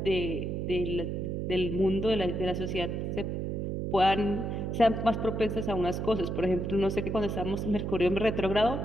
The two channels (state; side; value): noise; right; hum, 2 dB below the sound